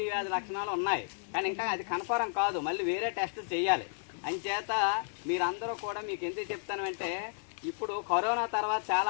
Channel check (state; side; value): silent; right; 56 dB below the other